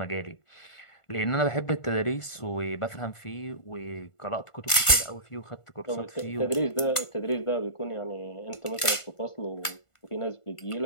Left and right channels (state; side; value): late; right; 1.5 ms